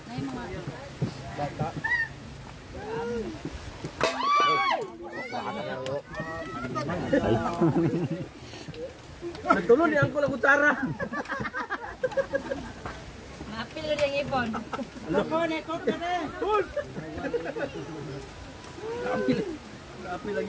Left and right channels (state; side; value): identical; both; correlation 1.00